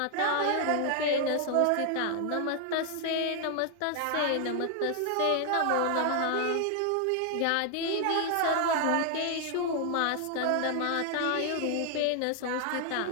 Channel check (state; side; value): different; both; correlation 0.00